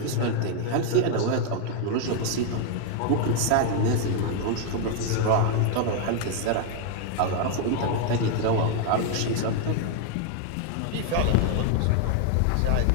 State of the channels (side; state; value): both; different; correlation 0.00